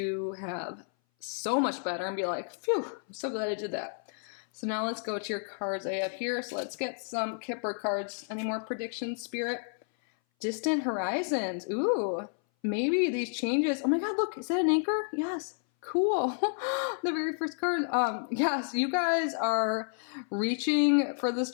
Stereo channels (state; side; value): silent; right; 57 dB below the other